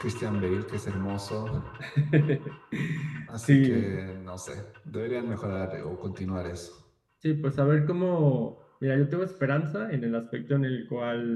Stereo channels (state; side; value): identical; both; correlation 1.00